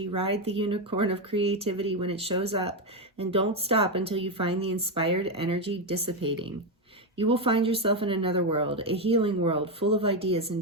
ride the unicorn of creativity when it shows up, and don't stop until you find the inspired energy dissipating. You will find yourself in another world, a healing world full of ideas and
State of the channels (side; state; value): both; normal; correlation 0.07